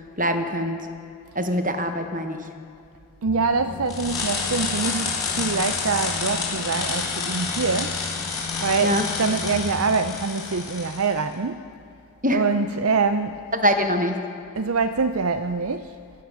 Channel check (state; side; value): normal; both; correlation -0.11